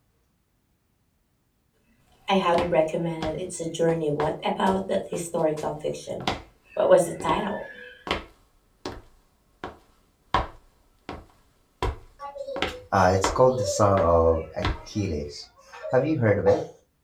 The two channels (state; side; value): identical; both; correlation 1.00